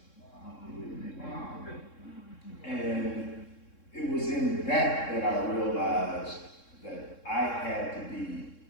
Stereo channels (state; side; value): late; right; 3.7 ms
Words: Wow. And it was in that I realized that I had to be